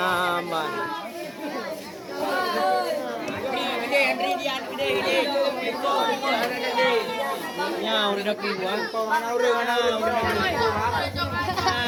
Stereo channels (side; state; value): both; identical; correlation 1.00